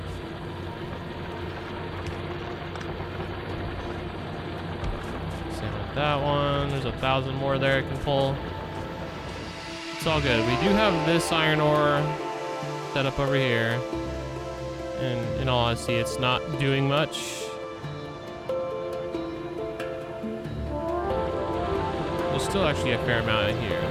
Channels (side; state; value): both; identical; correlation 1.00